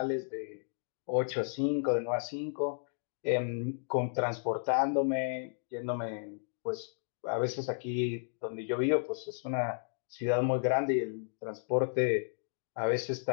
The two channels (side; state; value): right; silent; digital silence